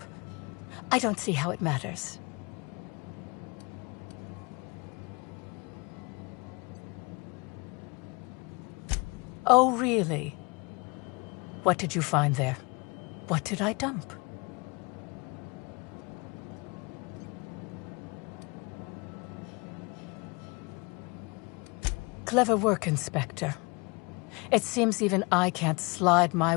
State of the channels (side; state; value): right; quieter; 28.3 dB